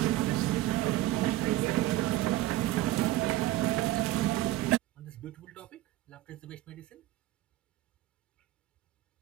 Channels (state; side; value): quieter; left; 15.6 dB